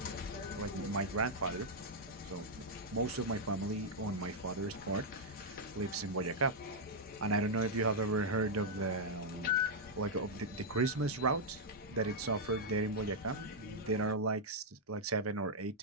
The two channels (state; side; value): normal; both; correlation -0.04